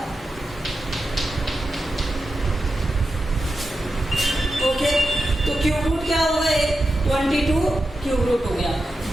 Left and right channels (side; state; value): both; normal; correlation 0.90